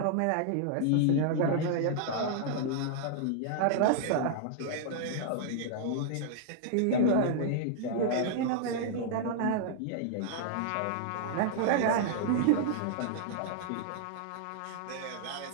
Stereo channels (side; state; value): both; different; correlation -0.01